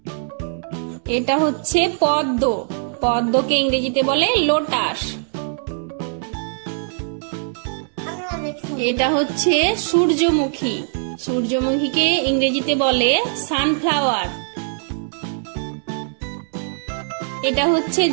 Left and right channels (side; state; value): left; silent; digital silence